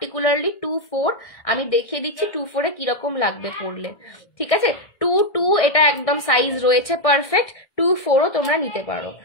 24, আমি দেখিয়ে দিচ্ছি 24 এ কিরকম লাগবে পরলে, ঠিক আছে। 22 এটা একদম সাইজ রয়েছে পারফেক্ট, 24ও তোমরা নিতে পারো,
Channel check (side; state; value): right; late; 1.6 ms